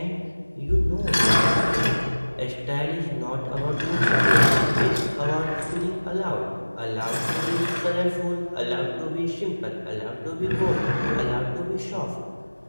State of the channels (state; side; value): inverted; both; correlation -1.00